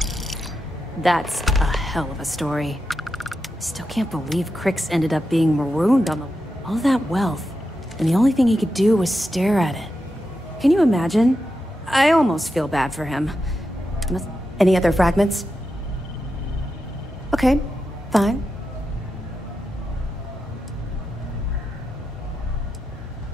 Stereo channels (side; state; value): both; normal; correlation 0.88